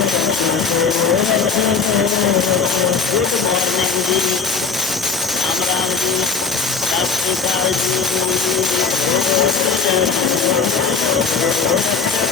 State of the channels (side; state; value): right; quieter; 5.2 dB